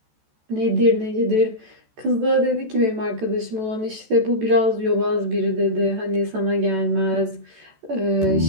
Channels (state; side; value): late; left; 14 ms